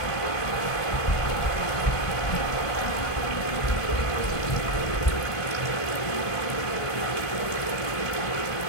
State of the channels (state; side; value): late; right; 1.5 ms